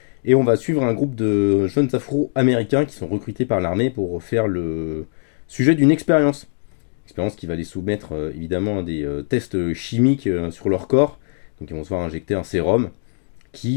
et on va suivre un groupe de jeunes afro-américains qui sont recrutés par l'armée pour faire le sujet d'une expérience. Expérience qui va les soumettre évidemment à des tests chimiques sur leur corps. Donc ils vont se faire injecter un sérum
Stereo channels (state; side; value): silent; right; digital silence